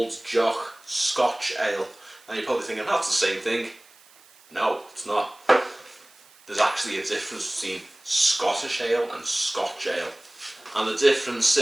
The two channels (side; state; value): right; noise; hiss, 27 dB below the sound